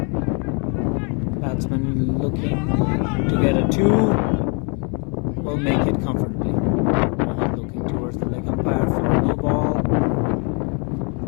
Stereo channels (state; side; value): quieter; right; 36.0 dB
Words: Batsman looking to get a 2. Will make it comfortably. Looking towards the leg umpire for a new ball.